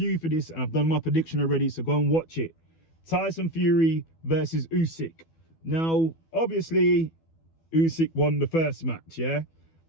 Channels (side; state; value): right; late; 12 ms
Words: for this and I've done my prediction already, so go and watch it. Tyson Fury versus Usyk. Now, obviously, Usyk won the first match, yeah?